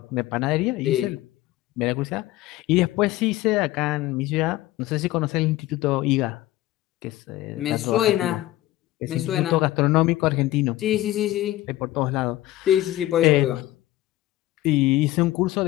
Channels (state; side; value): quieter; right; 16.2 dB